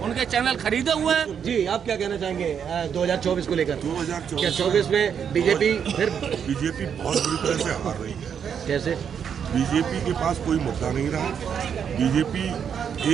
चैनल खरीदे हुए हैं। जी, आप क्या कहना चाहेंगे 2024 को लेकर? 2024 में बीजेपी बहुत बुरी तरह से हार रही है। कैसे? बीजेपी के पास कोई मुद्दा नहीं रहा। बीजेपी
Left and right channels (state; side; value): quieter; left; 7.7 dB